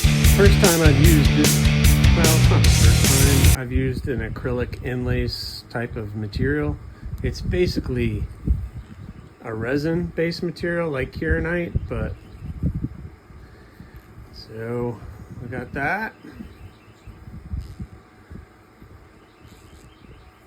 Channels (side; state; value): both; identical; correlation 1.00